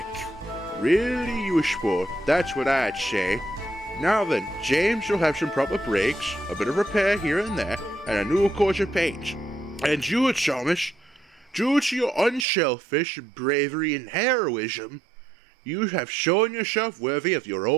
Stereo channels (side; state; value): left; drops out; at 12.5 s